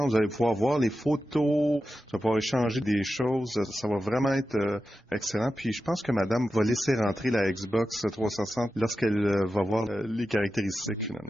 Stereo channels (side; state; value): both; normal; correlation 0.91